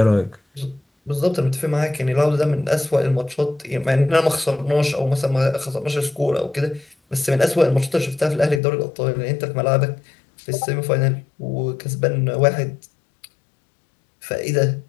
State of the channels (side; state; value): right; drops out; at 8.6 s